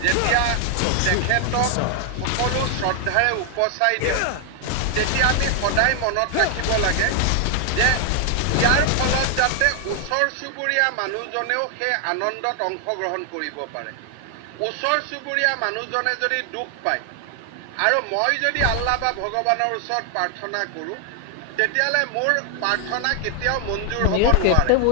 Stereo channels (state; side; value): different; both; correlation 0.00